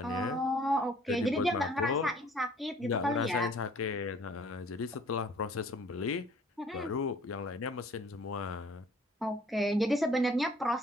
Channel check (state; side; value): normal; both; correlation 0.55